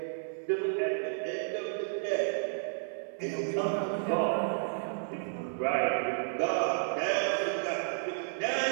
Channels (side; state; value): left; silent; digital silence